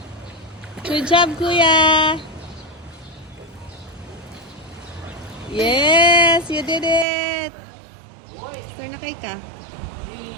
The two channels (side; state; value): left; drops out; at 7.1 s